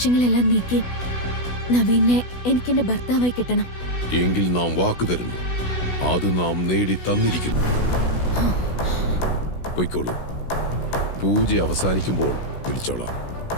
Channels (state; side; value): late; right; 16 ms